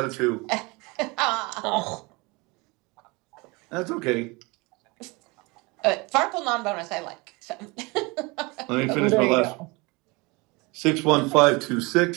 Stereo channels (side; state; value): left; quieter; 26.0 dB